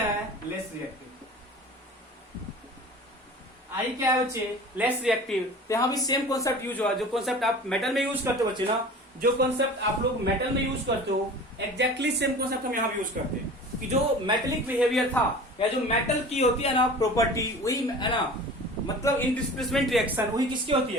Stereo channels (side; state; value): both; normal; correlation 0.40